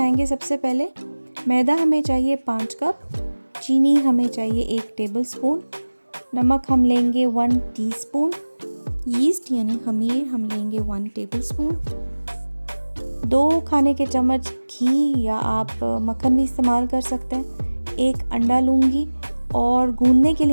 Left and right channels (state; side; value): inverted; both; correlation -1.00